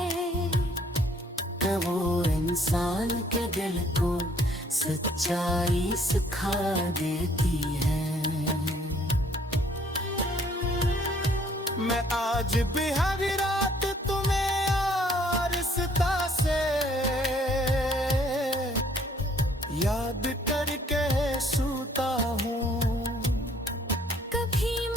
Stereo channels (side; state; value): both; normal; correlation 0.62